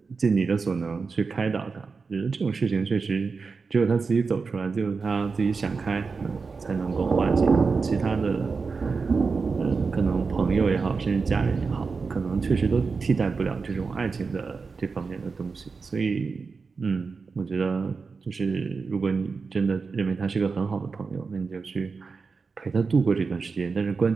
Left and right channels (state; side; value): quieter; left; 4.7 dB